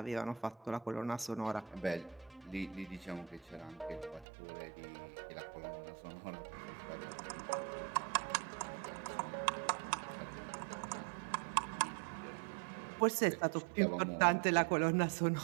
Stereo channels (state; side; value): drops out; left; at 4.2 s